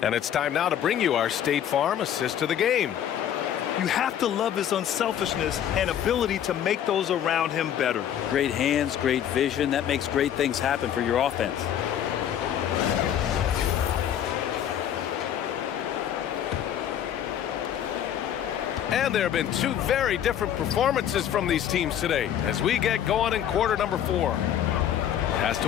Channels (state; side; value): quieter; right; 10.1 dB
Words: And it's time now to bring you our State Farm assist to the game. You have to love his unselfishness and ability to make those around him better. Great hands, great vision. That makes great things happen for your offense. And there have been two very different performances from these teams today as we get going in quarter number 4. Pass